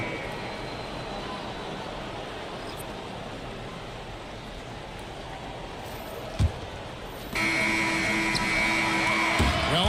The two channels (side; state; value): both; identical; correlation 1.00